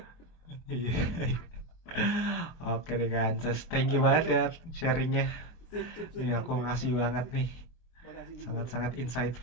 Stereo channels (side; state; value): right; late; 23 ms